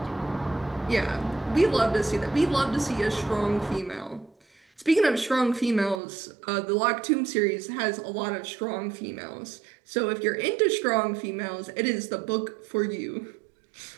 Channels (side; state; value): left; drops out; at 6.0 s